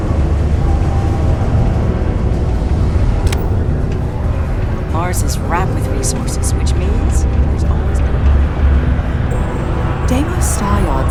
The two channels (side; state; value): both; identical; correlation 1.00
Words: Mars is wrapped with resources, which means there's always Deimos Star